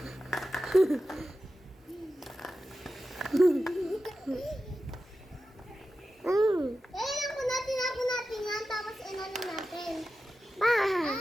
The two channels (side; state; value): both; normal; correlation 0.93